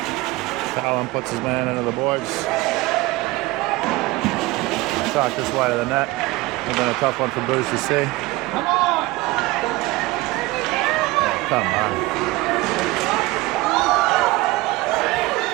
Callum puts his man into the boards. Shot just wide of the net. It's been a tough one for Bruce to see. Come on.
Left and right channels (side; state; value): left; quieter; 20.5 dB